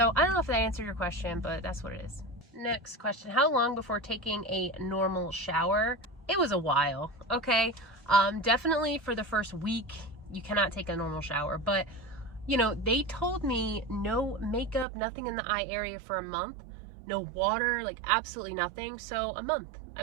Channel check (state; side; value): drops out; left; at 14.9 s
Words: I don't know if that answered your question, but that's what it is. Next question, how long before taking a normal shower? It was a while, okay? Definitely for the first week, you cannot take a normal shower, but you know, they told me no makeup, nothing in the eye area for a month, no water, like absolutely nothing. So a month,